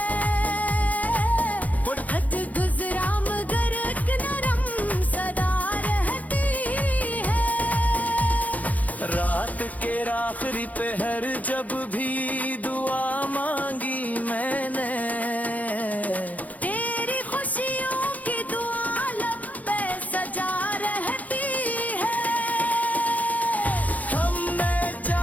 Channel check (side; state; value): right; late; 0.076 ms